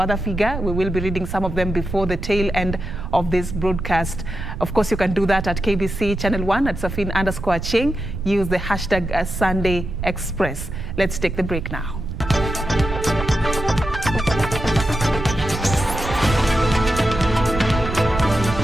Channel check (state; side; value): noise; right; rumble, 7 dB below the sound